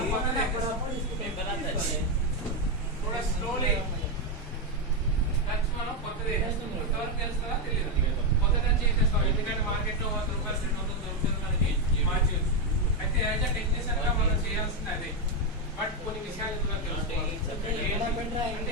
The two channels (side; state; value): both; normal; correlation 0.05